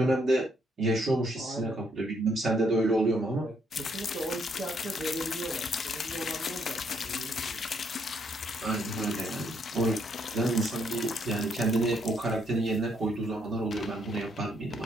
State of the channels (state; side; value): normal; both; correlation 0.72